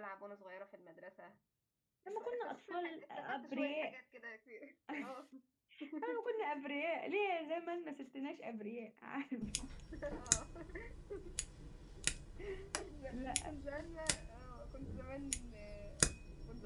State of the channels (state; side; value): identical; both; correlation 1.00